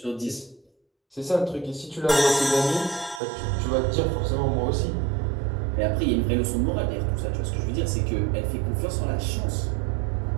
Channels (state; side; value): drops out; left; at 3.2 s